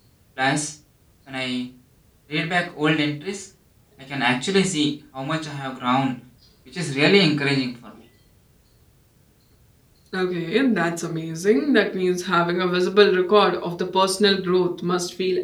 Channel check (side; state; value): both; identical; correlation 1.00